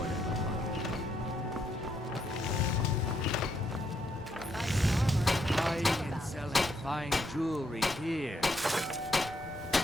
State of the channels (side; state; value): both; normal; correlation 0.75